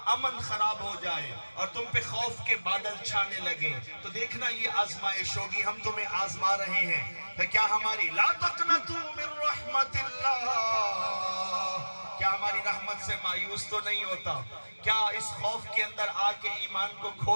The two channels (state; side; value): inverted; both; correlation -1.00